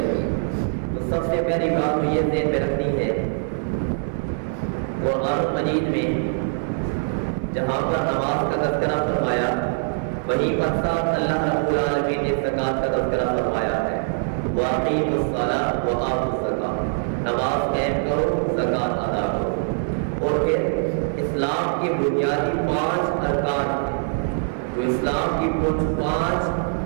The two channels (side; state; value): left; silent; 57 dB below the other